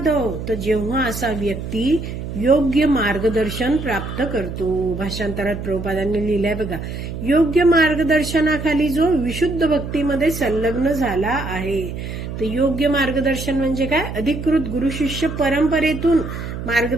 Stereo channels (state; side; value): noise; right; hum, 7 dB below the sound